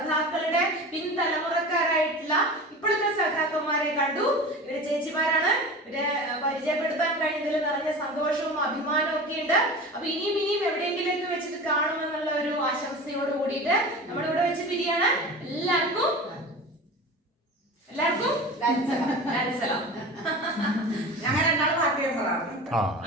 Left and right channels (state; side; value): normal; both; correlation 0.33